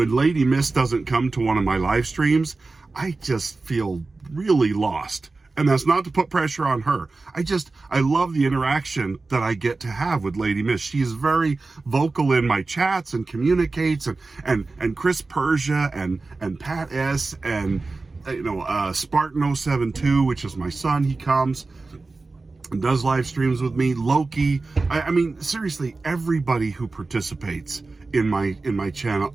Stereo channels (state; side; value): quieter; left; 3.6 dB